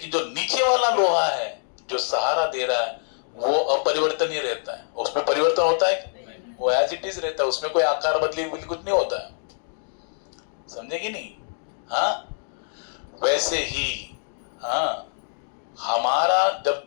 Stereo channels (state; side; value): silent; right; digital silence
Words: जो नीचे वाला लोहा है जो सहारा दे रहा है वो अपरिवर्तनीय रहता है, उसमें परिवर्तन होता है, वो एज इट इज रहता है, उसमें कोई आकार बदली कुछ नहीं होता है। समझे कि नहीं? हाँ, वैसे ही हाँ, हमारा जब